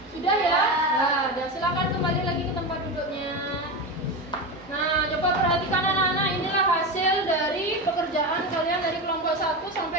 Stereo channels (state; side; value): noise; right; hum, 29 dB below the sound